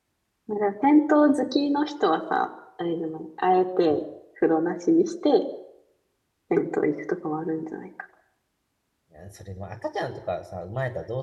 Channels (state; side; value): identical; both; correlation 1.00